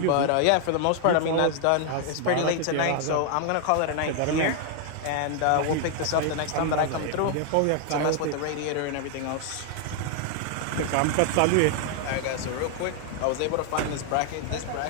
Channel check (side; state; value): both; different; correlation 0.00